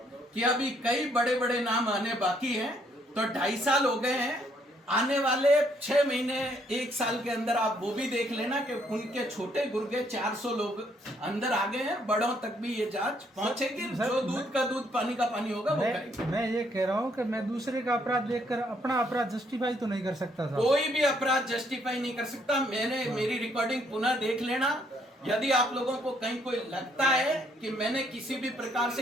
कि अभी कई बड़े बड़े नाम आने बाकी हैं। तो 2.5 साल हो गए हैं, आने वाले 6 महीने 1 साल के अंदर आप वो भी देख लेना कि उनके छोटे गुर्गे 400 लोग अंदर आ गए हैं। बड़ों तक भी ये जांच पहुंचेगी। जो दूध का दूध पानी का पानी होगा वो करेंगे। मैं ये कह रहा हूँ कि मैं दूसरे का अपराध देखकर अपना अपराध जस्टिफाई तो नहीं कर सकता था। कोई भी अपराध जस्टिफाई नहीं कर सकता। मेरी रिकॉर्डिंग पुनः देख लेना। यदि आप लोगों को कहीं कोई लगता है कि मैंने किसी भी प्रकार से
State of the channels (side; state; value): both; normal; correlation 0.69